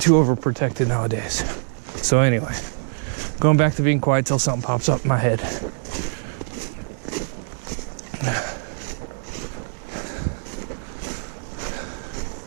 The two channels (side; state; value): left; silent; digital silence